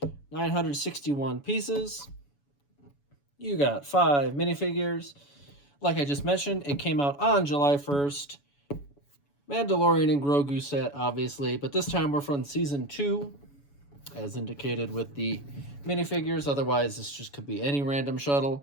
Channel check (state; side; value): late; right; 7.1 ms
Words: 961 pieces. You got 5 minifigures. Like I just mentioned, it came out on July 1st. Mandalorian and Grogu set, obviously, but this time we're from Season 2, as indicated with the minifigures. Otherwise, this just could be any random